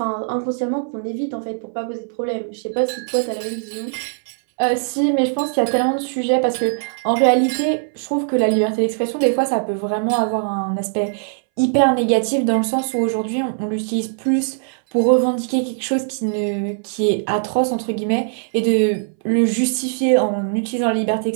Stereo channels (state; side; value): silent; left; 63 dB below the other